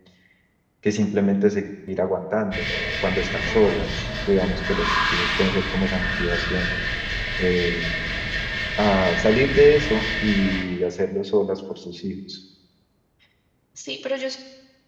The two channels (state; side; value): identical; both; correlation 1.00